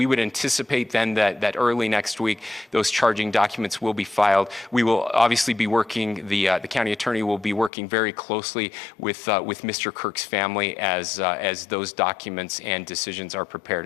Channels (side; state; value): right; drops out; at 7.7 s